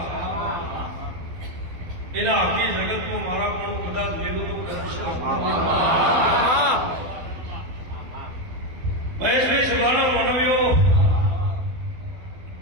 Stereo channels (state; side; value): late; left; 12 ms